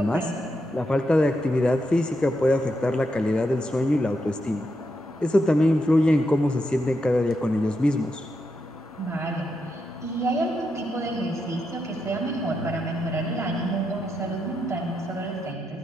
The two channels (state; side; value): normal; both; correlation 0.83